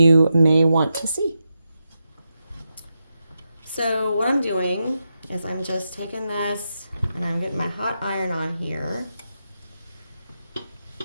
may want to see. So what I'm doing is I'm just taking this and I'm getting my hot iron on here.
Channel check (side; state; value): both; inverted; correlation -0.87